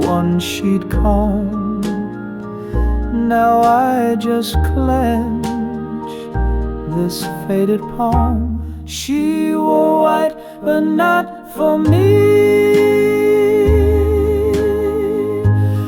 she'd calm. Now I just clench this faded palm. She wore white, but not for me.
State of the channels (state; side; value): identical; both; correlation 1.00